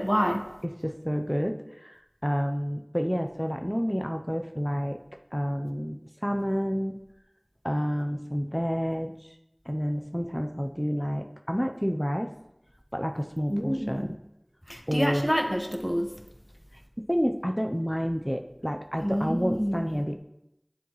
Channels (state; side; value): identical; both; correlation 1.00